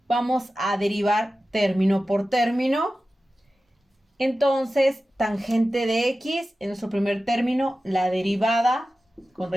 Vamos a derivar término por término. Entonces, tangente de x, en nuestro primer término, la derivada con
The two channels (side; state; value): both; normal; correlation 0.94